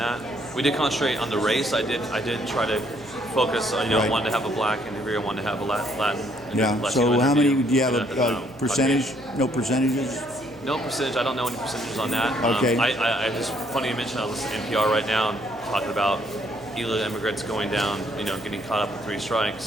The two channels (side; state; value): right; noise; hum, 24 dB below the sound